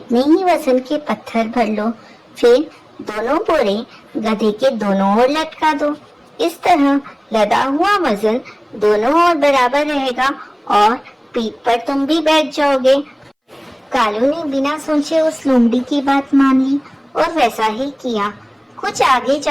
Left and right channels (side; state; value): both; identical; correlation 1.00